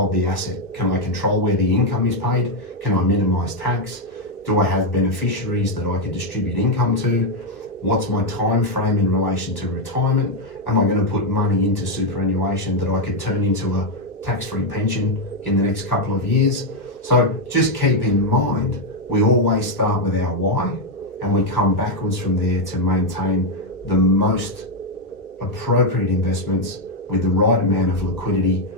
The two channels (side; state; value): right; late; 1.5 ms